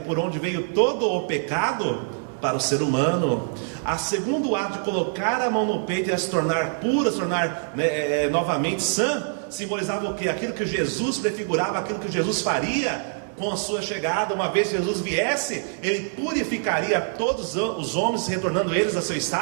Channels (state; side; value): silent; left; digital silence